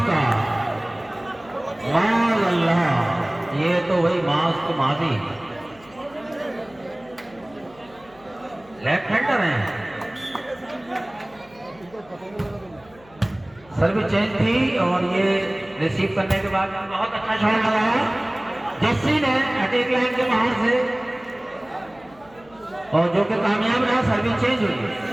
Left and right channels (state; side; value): noise; left; hum, 26 dB below the sound